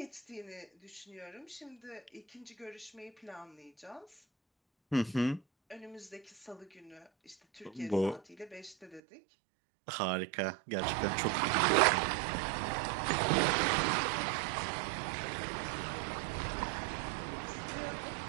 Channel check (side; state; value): left; drops out; at 9.0 s